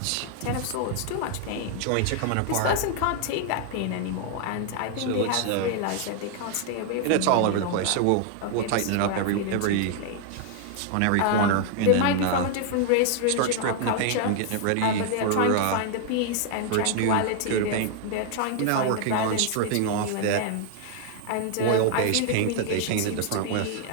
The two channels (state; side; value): different; both; correlation 0.00